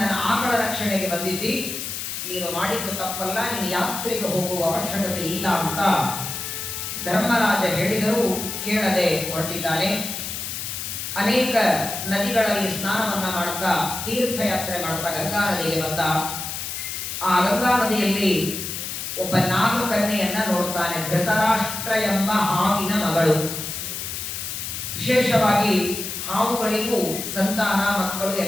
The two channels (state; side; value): noise; left; hiss, 5 dB below the sound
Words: ಆಕಳ ರಕ್ಷಣೆಗೆ ಬಂದಿದ್ದಿ, ನೀನು ಮಾಡಿದ್ದು ತಪ್ಪಲ್ಲ, ನೀನು ಯಾತ್ರೆಗೆ ಹೋಗುವ ಅವಶ್ಯಕತೆ ಇಲ್ಲ ಅಂತ ಧರ್ಮರಾಜ ಹೇಳಿದರೂ ಕೇಳದೆ ಹೊರಟಿದ್ದಾನೆ. ಅನೇಕ ನದಿಗಳಲ್ಲಿ ಸ್ನಾನವನ್ನ ಮಾಡುತ್ತಾ ತೀರ್ಥಯಾತ್ರೆ ಮಾಡುತ್ತಾ ಗಂಗಾ ನದಿಗೆ ಬಂದ. ಆ ಗಂಗಾ ನದಿಯಲ್ಲಿ ಒಬ್ಬ ನಾಗಕನ್ಯೆಯನ್ನ ನೋಡುತ್ತಾನೆ. ಧೃತರಾಷ್ಟ್ರ ಎಂಬ ಹಾವಿನ ಮಗಳು. ವಿಶೇಷವಾಗಿ ಹಾವುಗಳಿಗೂ ಸಂತಾನ ಮಕ್ಕಳು